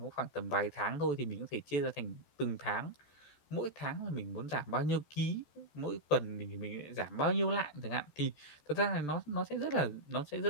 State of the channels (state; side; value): late; right; 14 ms